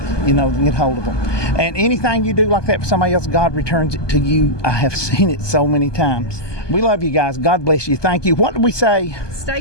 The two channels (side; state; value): right; late; 1.2 ms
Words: you know, to get hold of them. And anything you do like that for somebody else, God returns it to you. I have seen it so many times. We love you guys. God bless you. Thank you. What did we say? Stay